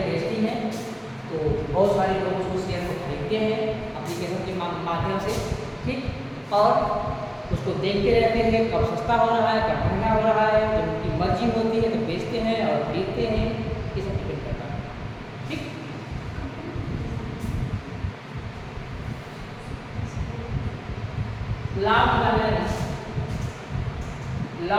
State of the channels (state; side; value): identical; both; correlation 1.00